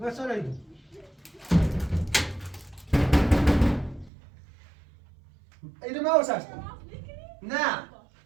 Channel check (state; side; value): drops out; left; at 4.1 s